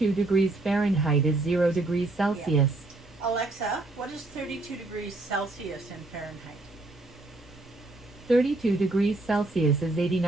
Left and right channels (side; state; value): left; quieter; 3.0 dB